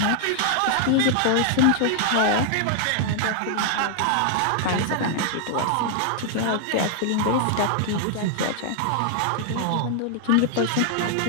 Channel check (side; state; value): both; different; correlation 0.00